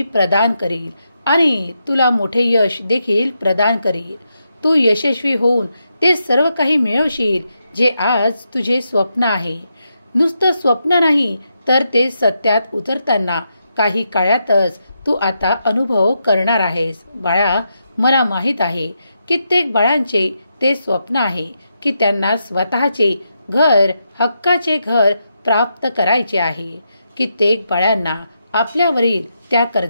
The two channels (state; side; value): inverted; both; correlation -0.84